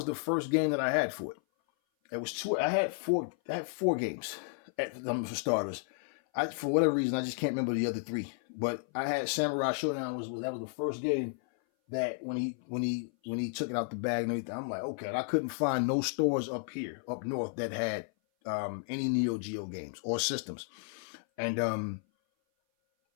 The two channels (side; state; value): right; silent; 56 dB below the other